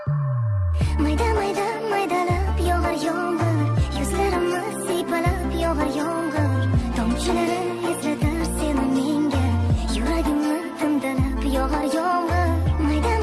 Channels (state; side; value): identical; both; correlation 1.00